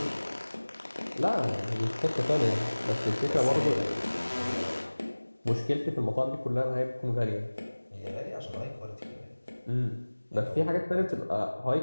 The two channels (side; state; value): both; inverted; correlation -1.00